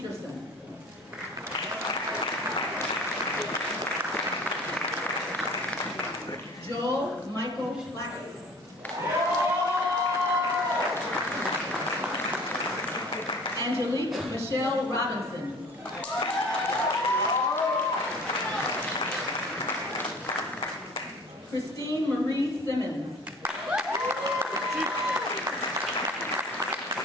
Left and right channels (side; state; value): both; normal; correlation 0.46